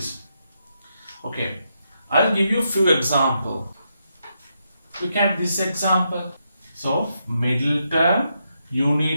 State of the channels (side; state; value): both; inverted; correlation -0.81